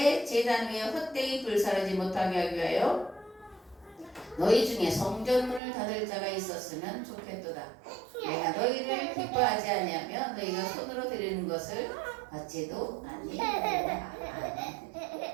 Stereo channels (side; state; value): left; drops out; at 5.6 s